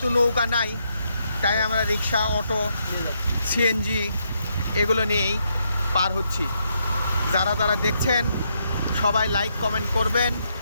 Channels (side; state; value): both; inverted; correlation -0.77